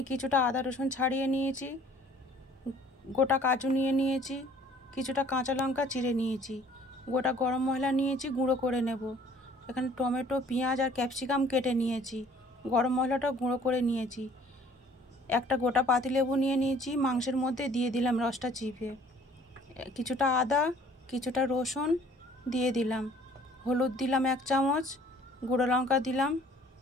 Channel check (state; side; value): normal; both; correlation 0.55